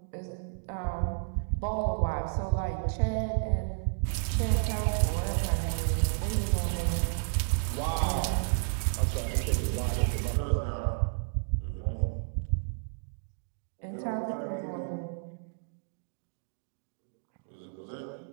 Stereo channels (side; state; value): left; silent; digital silence